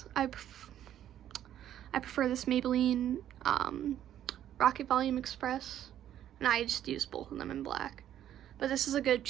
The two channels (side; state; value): left; quieter; 11.2 dB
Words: prefer this Maybelline Rocket Volume Express, and I just use both of them in black. But this is a good